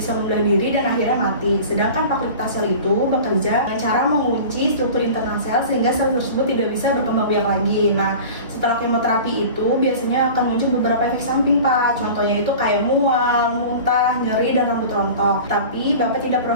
membelah diri dan akhirnya mati. Sedangkan paclitaxel itu bekerja dengan cara mengunci struktur internal sel sehingga sel tersebut tidak bisa berkembang biak lagi. Nah, setelah kemoterapi itu biasanya akan muncul beberapa efek samping Pak. Contohnya itu kayak mual, muntah, nyeri, dan rambut rontok. Tapi Bapak tidak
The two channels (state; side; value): inverted; both; correlation -0.38